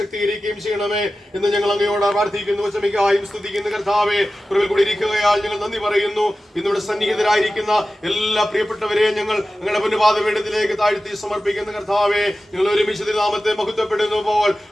ചെയ്യണമേ എന്ന് ഞങ്ങൾ അങ്ങയോട് പ്രാർത്ഥിക്കുന്നു. വചമിക്കായും സ്തുതിക്കുന്നു. കർത്താവെ, കുറവിൽ കൂടി ഇരിക്കുകയാൽ ഞങ്ങൾ നന്ദി പറയുന്നു. ഇന്നിവിടെ സന്നിഹിതരായിരിക്കുന്ന എല്ലാ പ്രിയപ്പെട്ടവരെയും ഞങ്ങൾ ഞങ്ങളുടെ പുണ്യപാദപീഠത്തിലേക്ക് താഴ്ത്തി സമർപ്പിക്കുന്ന കർത്താവെ, ഞങ്ങൾ ഒരുമിച്ച് നാമത്തെ മഹത്വപ്പെടുന്നു പോൽ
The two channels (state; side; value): normal; both; correlation 0.94